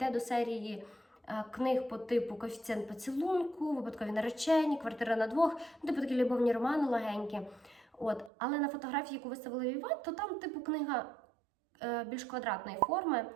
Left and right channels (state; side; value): drops out; left; at 8.3 s